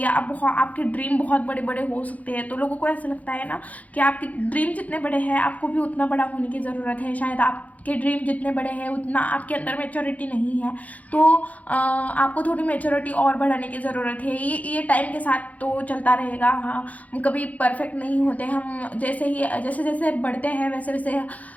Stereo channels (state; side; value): late; right; 0.073 ms